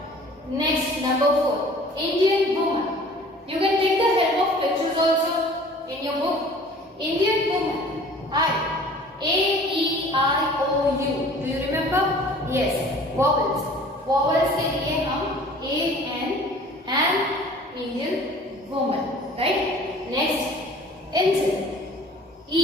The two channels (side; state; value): both; normal; correlation 0.48